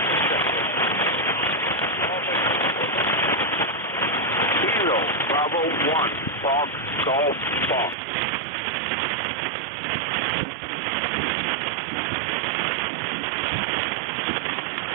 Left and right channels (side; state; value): left; drops out; at 8.0 s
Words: Bravo 1, Fox, Golf, Fox.